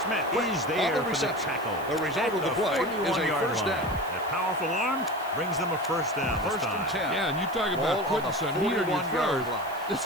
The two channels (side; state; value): right; noise; hiss, 20 dB below the sound